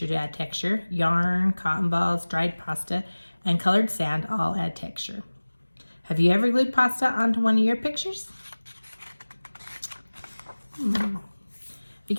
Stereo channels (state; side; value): inverted; both; correlation -1.00